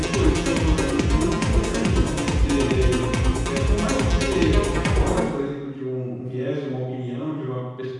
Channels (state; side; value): identical; both; correlation 1.00